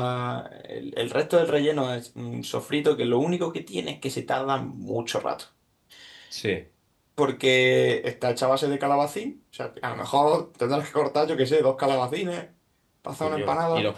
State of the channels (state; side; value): identical; both; correlation 1.00